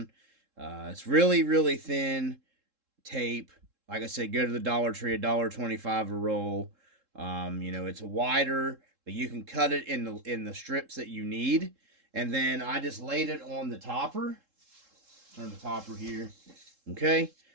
It's really, really thin tape. Like I said, go to the Dollar Tree, $1.25 a roll. You know, it's wider, but you can cut it in the strips that you need. And then I just laid it on the topper. Turn the topper here. Okay.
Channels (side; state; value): left; late; 3.7 ms